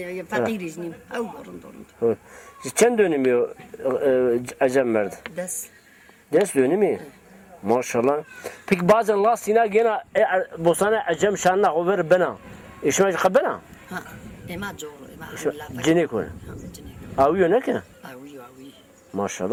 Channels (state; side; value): identical; both; correlation 1.00